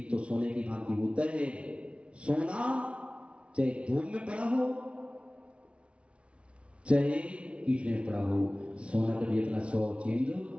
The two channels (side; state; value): left; late; 0.060 ms